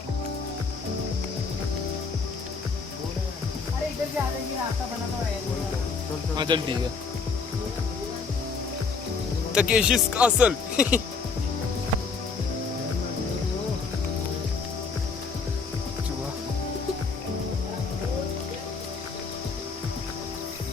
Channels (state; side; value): quieter; right; 4.8 dB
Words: अरे इधर से आ जाएंगे, रास्ता बना तो है। हाँ चल ठीक है। Takeshi's castle.